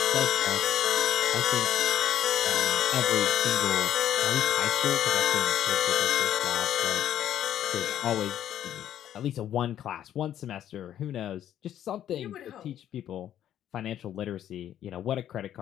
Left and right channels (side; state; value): right; quieter; 11.0 dB